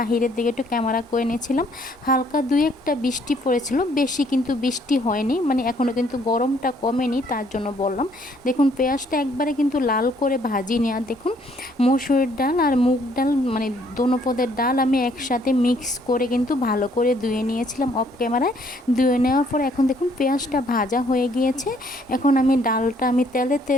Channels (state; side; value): normal; both; correlation 0.65